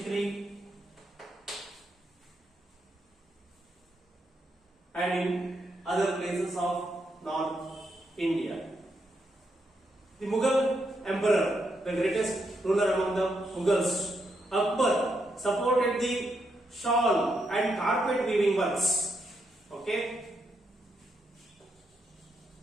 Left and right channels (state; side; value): normal; both; correlation 0.80